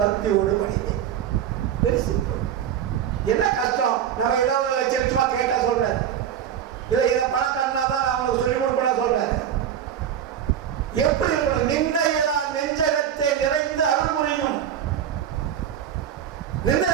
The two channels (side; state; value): left; quieter; 9.5 dB